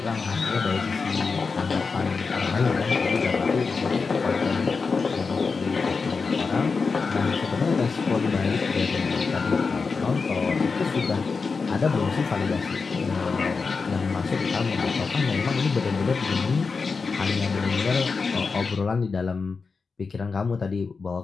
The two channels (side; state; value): right; quieter; 4.7 dB